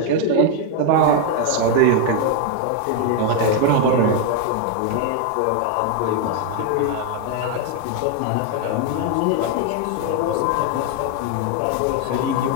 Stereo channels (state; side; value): different; both; correlation 0.01